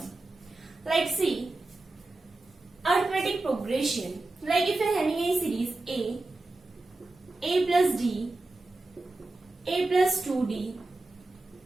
Like see, arithmetic progression, like if you are having a series A plus D, A plus 2D,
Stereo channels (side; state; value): left; quieter; 3.0 dB